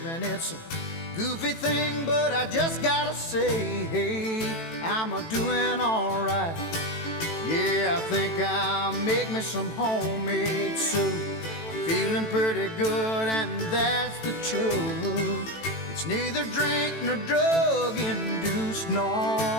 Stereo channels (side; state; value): right; late; 18 ms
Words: And it's a goofy thing, but I just gotta say, hey, I'm a-doing alright. Yeah, I think I'll make me some homemade soup. I'm feeling pretty good, and that's the truth. It's neither drink nor drug induced. No,